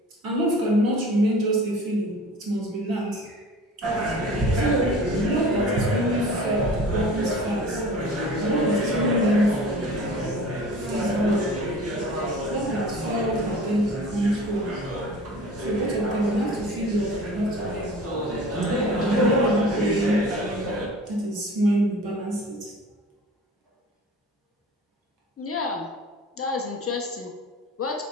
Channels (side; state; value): both; normal; correlation 0.42